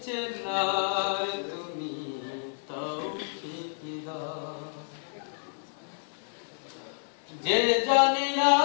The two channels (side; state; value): right; silent; digital silence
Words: চেনার তুমি তৌফিক দাও। যে জানে না